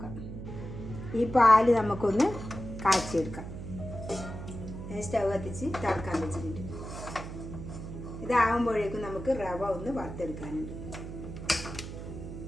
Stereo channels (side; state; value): right; noise; hum, 9 dB below the sound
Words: ഈ പാല് നമുക്കൊന്ന് കാച്ചിയെടുക്കാം. സ്റ്റൗ കത്തിച്ച് തിളക്കാൻ വെച്ചിട്ടുണ്ട്. ഇതാകുമ്പോഴേക്കും നമുക്ക് റവ ഒന്ന് വറുത്തെടുക്കാനുണ്ട്.